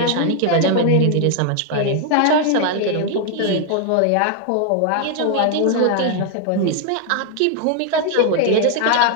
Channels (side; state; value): both; different; correlation 0.00